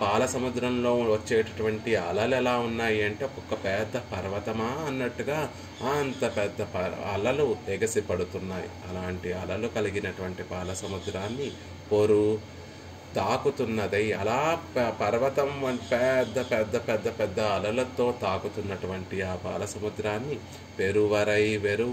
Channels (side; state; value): both; identical; correlation 1.00